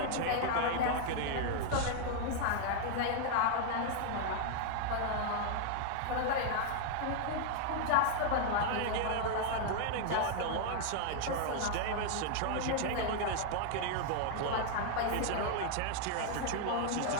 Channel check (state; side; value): different; both; correlation 0.00